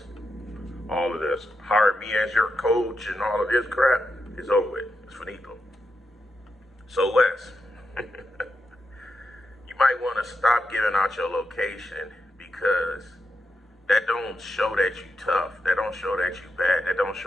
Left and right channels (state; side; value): normal; both; correlation 0.86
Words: all of this, hire me as your coach and all of this crap is over with. It's finito. So Wes, you might want to stop giving out your location because that don't show that you tough. That don't show that you bad. That don't